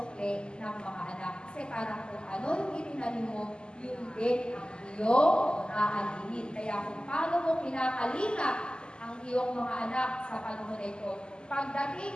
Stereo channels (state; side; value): late; right; 0.048 ms